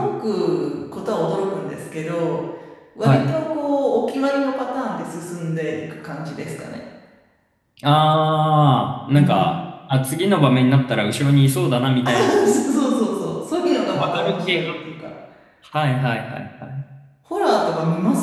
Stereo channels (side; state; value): both; identical; correlation 1.00